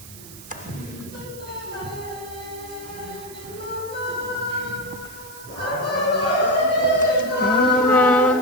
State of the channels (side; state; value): right; noise; hiss, 17 dB below the sound